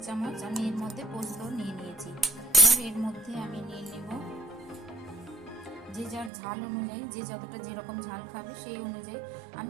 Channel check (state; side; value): drops out; left; at 6.3 s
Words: চামচ আমি এর মধ্যে পোস্ত নিয়ে নিয়েছি। এবার এর মধ্যে আমি নিয়ে নেব যে যার ঝাল অনুযায়ী, যে যতটা যেরকম ঝাল খাবে সেই অনুযায়ী